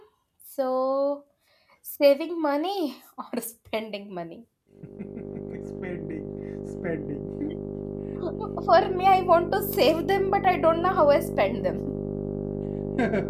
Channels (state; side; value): identical; both; correlation 1.00